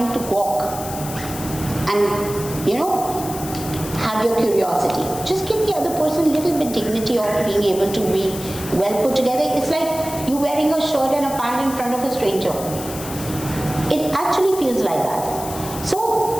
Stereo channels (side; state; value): left; noise; hiss, 11 dB below the sound